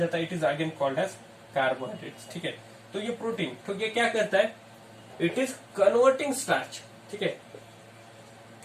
है, it is again called as carbohydrates. ठीक है, तो ये प्रोटीन, तो ये क्या करता है, इट इज कन्वर्टिंग स्टार्च। ठीक है,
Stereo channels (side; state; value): both; identical; correlation 1.00